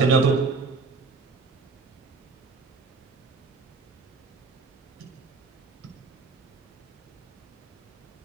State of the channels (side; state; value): left; quieter; 4.3 dB